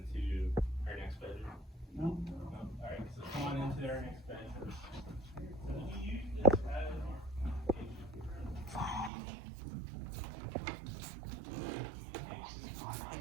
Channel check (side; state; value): left; drops out; at 9.1 s